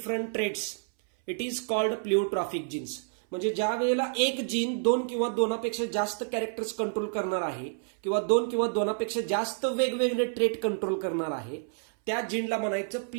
traits it is called pleiotropic genes. म्हणजे ज्या वेळेला एक जीन 2 किंवा 2पेक्षा जास्त कॅरेक्टर्स कंट्रोल करणार आहे किंवा 2 किंवा 2पेक्षा जास्त वेगवेगळे ट्रेट कंट्रोल करणार आहे त्या जीनला म्हणायचं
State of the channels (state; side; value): silent; left; 59 dB below the other